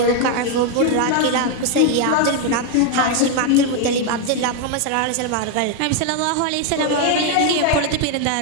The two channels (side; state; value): both; different; correlation 0.01